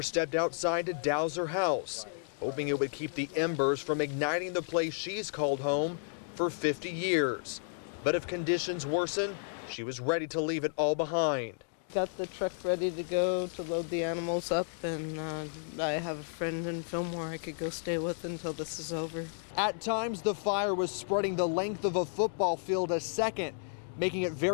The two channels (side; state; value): right; silent; digital silence